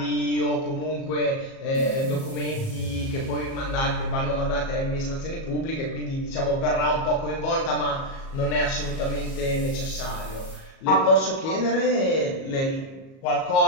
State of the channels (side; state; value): right; late; 37 ms